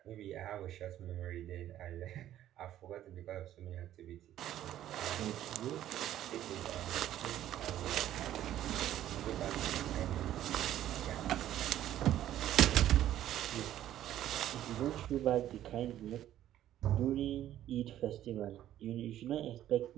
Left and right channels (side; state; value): left; quieter; 12.3 dB